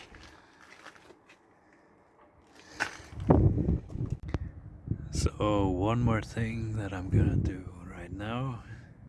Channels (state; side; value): identical; both; correlation 1.00